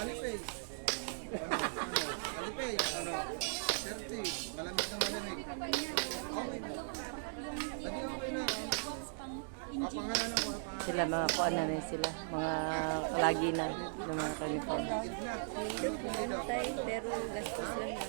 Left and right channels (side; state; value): left; silent; digital silence